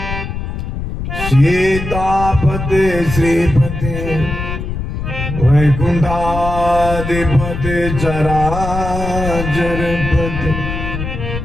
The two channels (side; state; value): left; noise; rumble, 5 dB below the sound